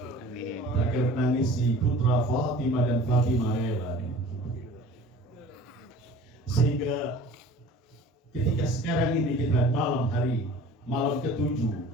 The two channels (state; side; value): normal; both; correlation 0.44